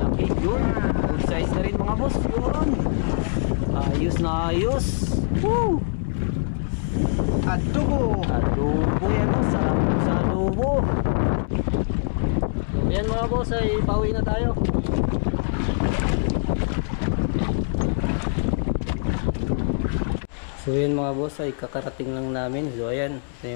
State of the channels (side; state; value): right; silent; digital silence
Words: Yun, good size na rin mga boss. Yun, ayos na ayos. Woo! Adobo Yan o, sarap sa adobo. So yan mga boss, ay pauwi na tayo. So yan mga boss, ay kakarating lang namin. So ayan, ito